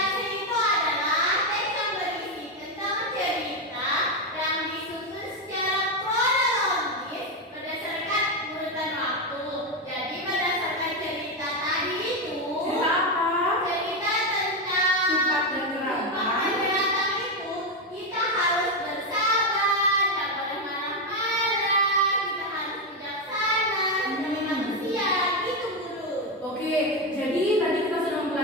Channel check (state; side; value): normal; both; correlation 0.09